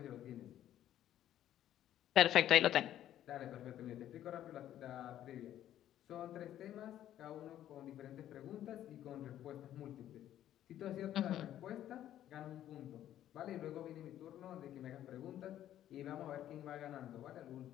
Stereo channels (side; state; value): right; quieter; 11.9 dB